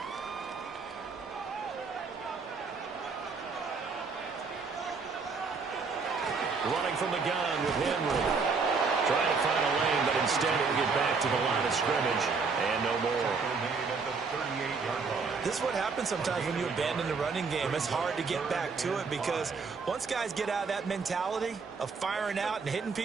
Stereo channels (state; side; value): quieter; left; 4.8 dB